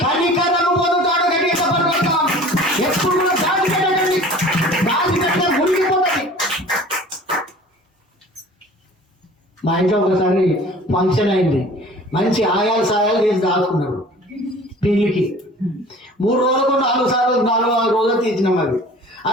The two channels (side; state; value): both; normal; correlation 0.45